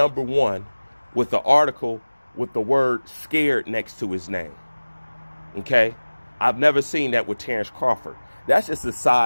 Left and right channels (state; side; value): inverted; both; correlation -1.00